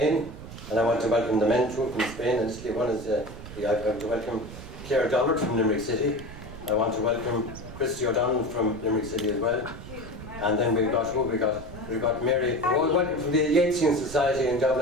and I want to welcome the men too from Spain and Italy. One is I want to welcome Claire Dollard from Limerick City. I want to welcome Christy O'Donnell from Limerick City as well. And then we've got Mary. All welcome from the Yeatsian Society in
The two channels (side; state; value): right; noise; rumble, 13 dB below the sound